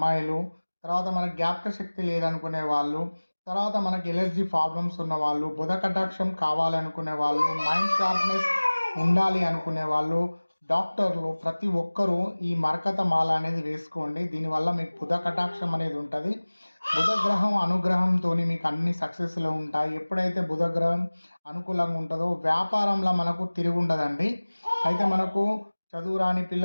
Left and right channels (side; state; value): both; inverted; correlation -1.00